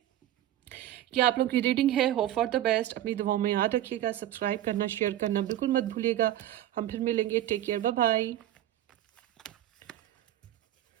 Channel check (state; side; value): quieter; left; 12.9 dB